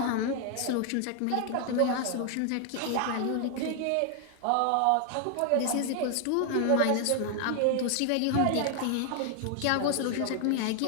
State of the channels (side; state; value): both; different; correlation 0.00